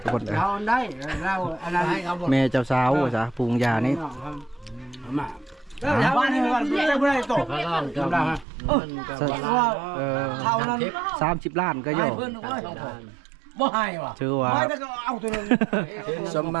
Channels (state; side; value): drops out; left; at 8.5 s